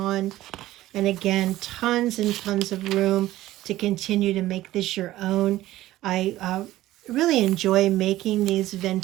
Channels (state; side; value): quieter; left; 15.6 dB